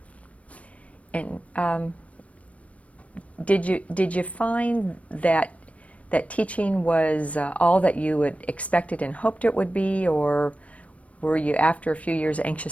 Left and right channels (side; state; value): right; late; 0.065 ms